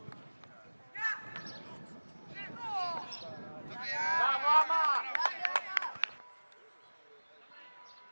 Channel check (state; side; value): inverted; both; correlation -1.00